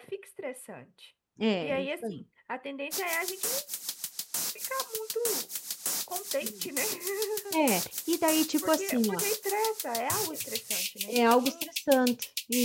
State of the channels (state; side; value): identical; both; correlation 1.00